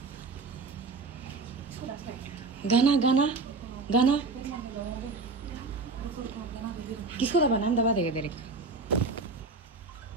गाना गाना गाना किसको दबाना? हम दबा देगा तेरे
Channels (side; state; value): left; quieter; 3.9 dB